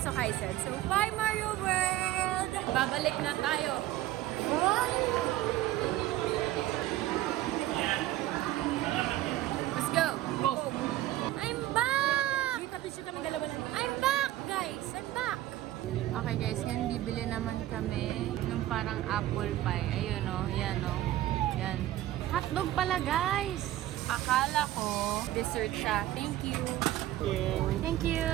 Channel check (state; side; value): quieter; left; 14.8 dB